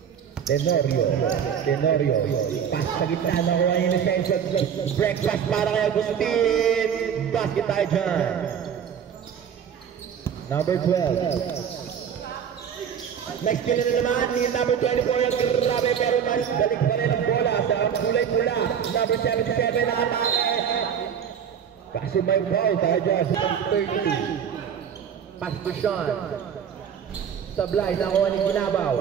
Tenorio. Pass sa gitna na kuha yung defensive. Breakfast para kay Agustin. Basket tayo dyan. Number 12. Next kill na naman ni number 24 ang grabe pero balik pa rin ang bola sa kulay pula. Number 77 na atake. Kasi may foul tayo dyan sa 30. Pass to Sean. Sablay, nakuha ni Ginabaw.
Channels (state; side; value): quieter; left; 8.0 dB